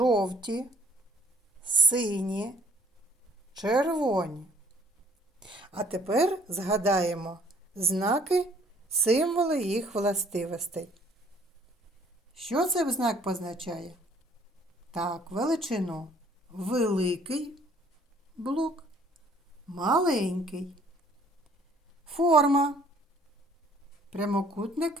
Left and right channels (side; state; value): both; normal; correlation 0.58